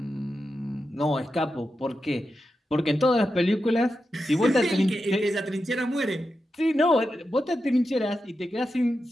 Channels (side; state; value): both; normal; correlation 0.89